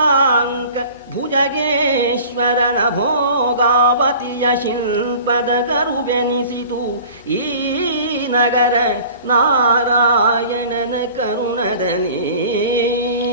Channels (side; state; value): both; inverted; correlation -0.44